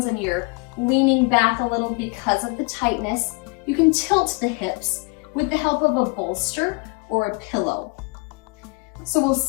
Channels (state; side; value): quieter; right; 30.2 dB